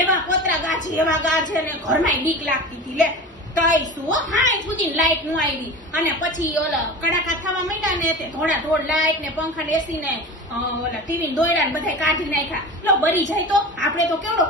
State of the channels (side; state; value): both; normal; correlation 0.33